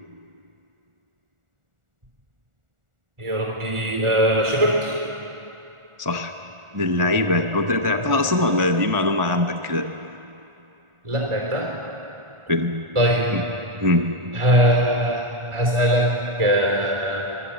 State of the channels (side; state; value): left; late; 1.4 ms